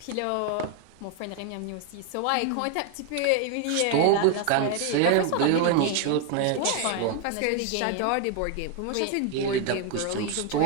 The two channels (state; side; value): different; both; correlation 0.01